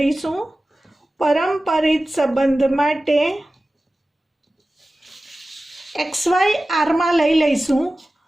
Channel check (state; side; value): normal; both; correlation 0.96